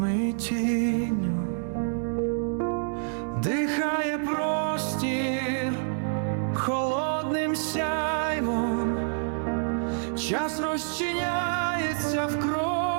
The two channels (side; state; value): left; silent; 60 dB below the other